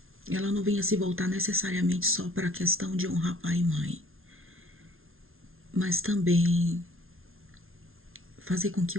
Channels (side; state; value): left; late; 0.61 ms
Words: ela não venha se voltar necessariamente só para a questão de honrar pai e mãe, mas também fazer com que